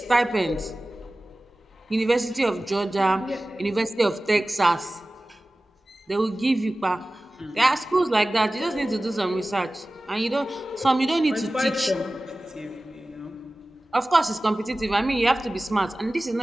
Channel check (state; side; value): normal; both; correlation 0.97